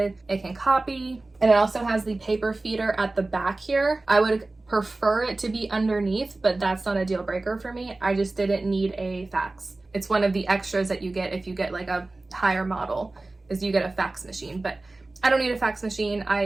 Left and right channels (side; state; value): left; quieter; 3.1 dB